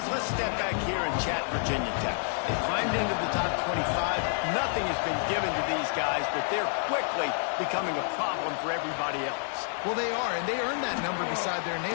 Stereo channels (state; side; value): silent; right; 59 dB below the other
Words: let's step back here and chat Virginia Tech. They climbed into the top 25. Nothing has been given to these guys, but they're quickly becoming a problem for everybody else. Well, they are, and they earned that number beside their name.